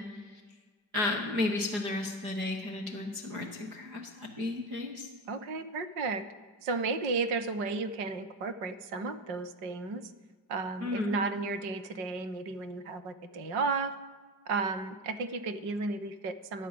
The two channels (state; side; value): late; left; 4.8 ms